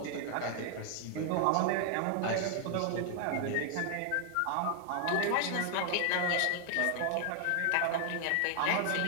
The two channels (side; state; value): both; different; correlation 0.00